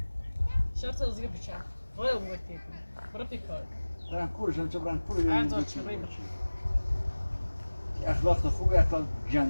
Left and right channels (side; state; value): both; inverted; correlation -1.00